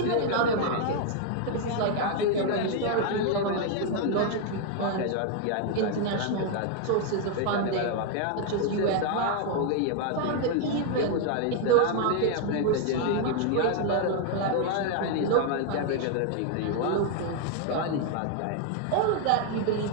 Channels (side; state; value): both; different; correlation 0.00